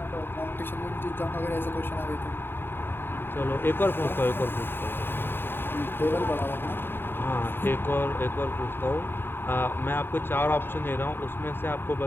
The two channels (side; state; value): right; late; 0.10 ms